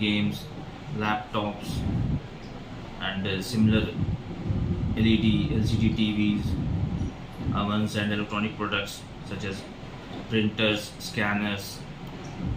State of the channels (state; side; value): identical; both; correlation 1.00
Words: laptops, and similar LED, LCD TVs, ovens, and electronic products such as printers, scanners,